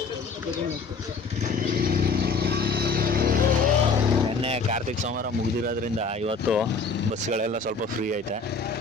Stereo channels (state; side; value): quieter; right; 4.4 dB